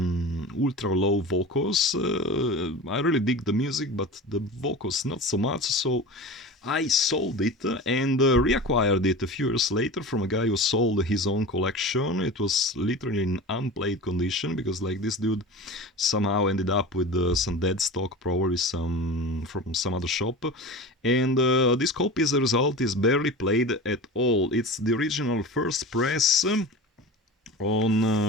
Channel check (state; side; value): normal; both; correlation 0.33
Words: ultra low vocals. I really dig the music, but the vocals not so much, so I sold it and reacquired it a few years later from a guy who sold his own collection. It was literally in unplayed condition because, like, this dude somehow ended up with some dead stock, probably from some other shop. And this copy, as a result, is barely played at all. It's the original first press. On